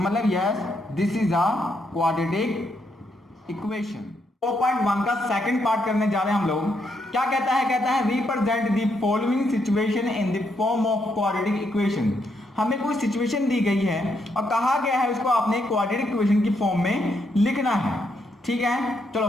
yes this is a quadratic equation. 4.1 का सेकंड पार्ट करने जा रहे हैं हम लोग। क्या कहता है represent the following situation in the form of quadratic equation. हमें कोई सिचुएशन दी गई है और कहा गया है उसको आपने क्वाड्रेटिक इक्वेशन की फॉर्म में लिखना है, ठीक है। चलो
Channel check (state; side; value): normal; both; correlation 0.77